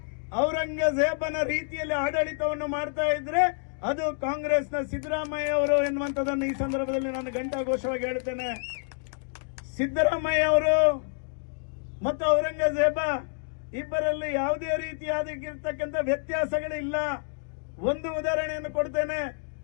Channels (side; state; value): right; silent; digital silence